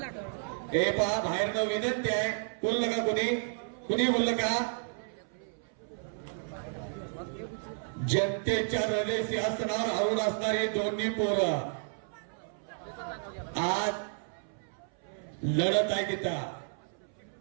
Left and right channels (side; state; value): left; silent; 57 dB below the other